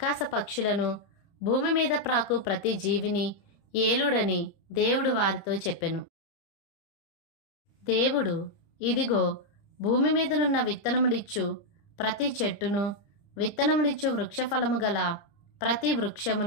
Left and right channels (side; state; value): right; late; 30 ms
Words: పక్షులను, భూమి మీద ప్రాకు ప్రతి జీవిని ఏలుడని దేవుడు వారితో చెప్పెను. దేవుడు, ఇదిగో భూమి మీదనున్న విత్తనములిచ్చు ప్రతి చెట్టును, విత్తనములిచ్చు వృక్షఫలము గల ప్రతి